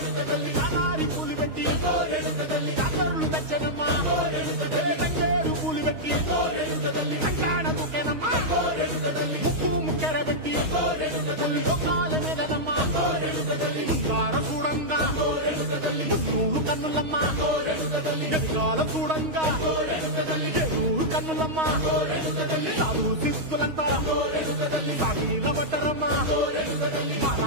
చాలారి పూలు పెట్టి జాతరలు తెచ్చనమ్మా తంగేరు పూలు పెట్టి కంకాణ దూకేనమ్మా ముక్కు ముక్కెర పెట్టి ముల్లోకాల మీదనమ్మా ముంగార చూడంగా మున్నూరు కన్నులమ్మా ఎదిగాల చూడంగా ఏనూరు కన్నులమ్మా సాధు శిస్తులంతా సాగిల పడ్డరమ్మా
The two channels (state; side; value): late; left; 6.3 ms